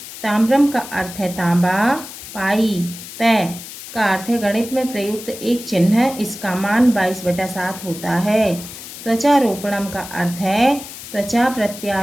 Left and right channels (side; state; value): left; noise; hiss, 13 dB below the sound